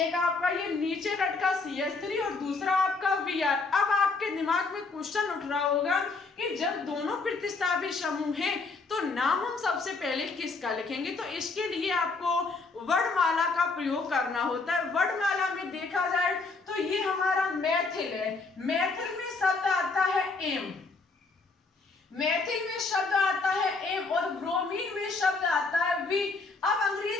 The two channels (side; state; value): right; quieter; 4.0 dB